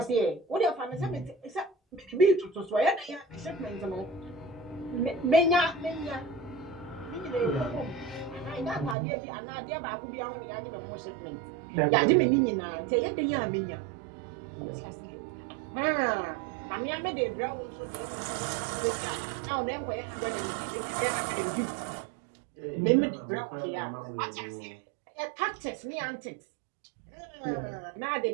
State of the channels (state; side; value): drops out; left; at 9.0 s